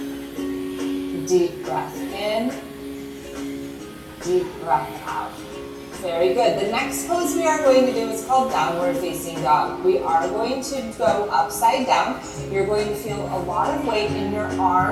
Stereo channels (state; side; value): identical; both; correlation 1.00